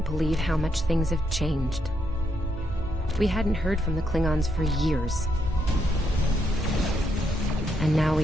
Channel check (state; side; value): normal; both; correlation 0.78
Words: believe how much things have changed. We hadn't heard from the Klingons for years. And now